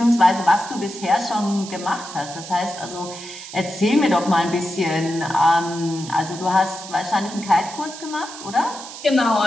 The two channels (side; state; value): right; noise; hiss, 13 dB below the sound